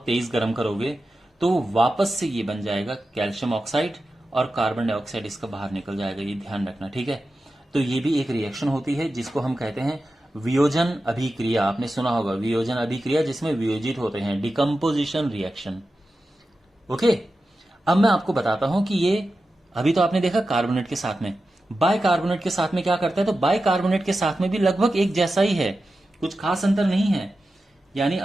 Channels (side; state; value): both; normal; correlation 0.92